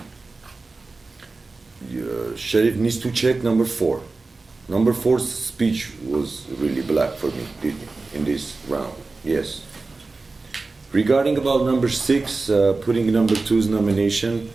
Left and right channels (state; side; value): quieter; left; 3.7 dB